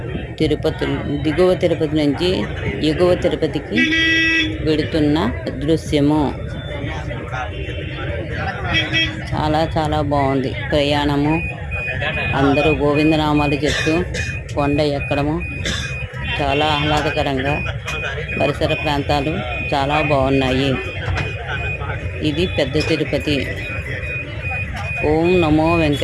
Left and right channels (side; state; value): both; identical; correlation 1.00